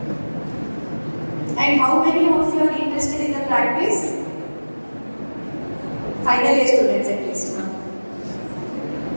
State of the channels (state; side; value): inverted; both; correlation -1.00